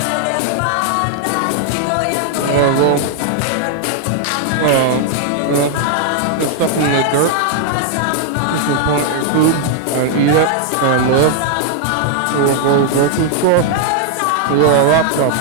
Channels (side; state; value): both; different; correlation 0.00